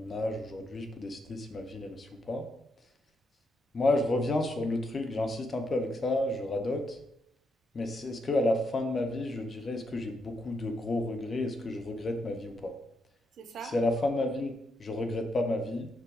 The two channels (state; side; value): normal; both; correlation 0.80